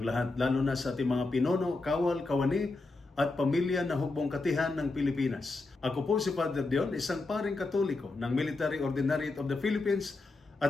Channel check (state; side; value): quieter; right; 3.3 dB